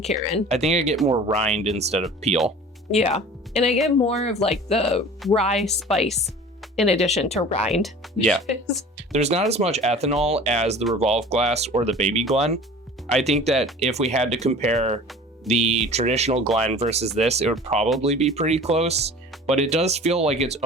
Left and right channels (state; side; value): normal; both; correlation 0.42